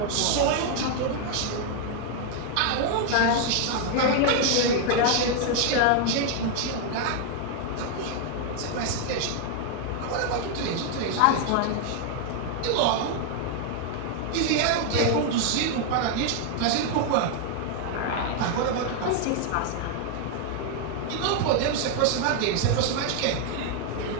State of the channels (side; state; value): both; different; correlation 0.00